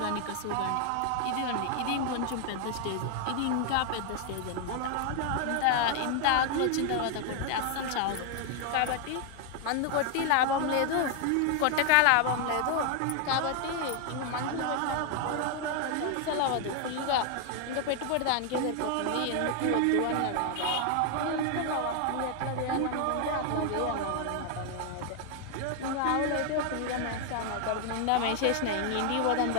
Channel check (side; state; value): both; different; correlation 0.00